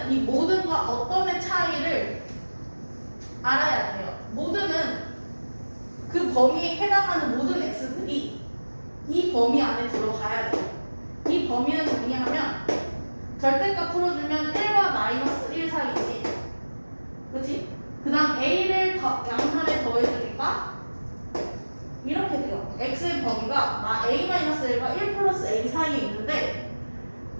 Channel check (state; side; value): inverted; both; correlation -1.00